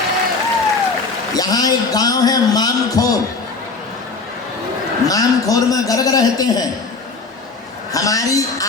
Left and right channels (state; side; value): quieter; right; 4.2 dB